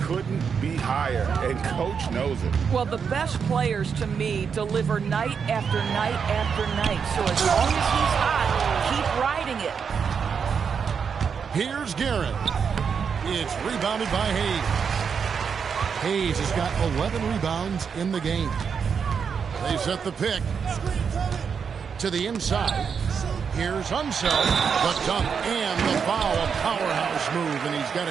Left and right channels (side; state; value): left; quieter; 6.5 dB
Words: couldn't be higher, and coach knows it. Well, the best players, to me, deliver night after night after night. So as long as he's hot, keep riding it. Here's Garrett. It's rebounded by Hayes. Hayes has got 11 rebounds in the game. They set the pick to the inside. Here's Unseld, the dunk and the foul, a powerhouse move, and he's got